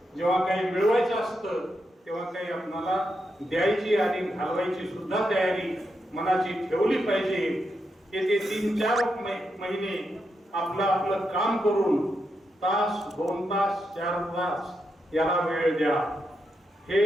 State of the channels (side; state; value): both; normal; correlation 0.84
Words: जेव्हा काही मिळवायचं असतं तेव्हा काही आपल्याला द्यायची आणि घालवायची सुद्धा तयारी मनाची ठेवली पाहिजे. येथे 3-4 महिने आपलं काम करून तास, 2 तास, 4 तास याला वेळ द्या. हे